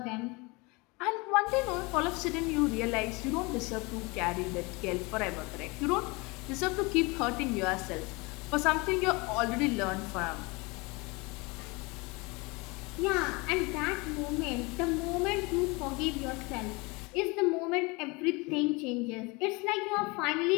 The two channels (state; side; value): quieter; right; 26.4 dB